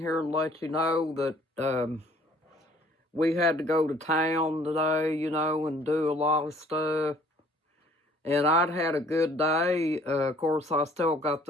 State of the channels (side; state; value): both; normal; correlation 0.57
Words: and let you know that we had to go to town today, and do a lot of stuff. And I'd had a good day. Of course, I still got